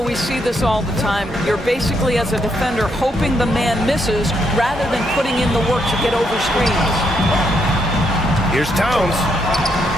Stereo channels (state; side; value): normal; both; correlation 0.76